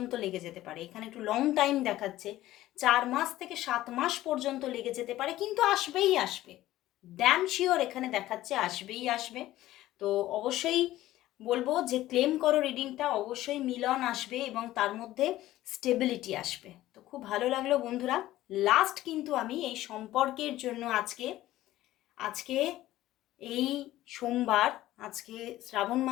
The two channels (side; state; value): right; quieter; 15.2 dB